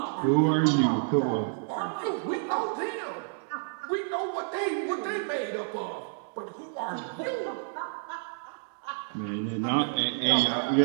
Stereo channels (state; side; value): silent; left; digital silence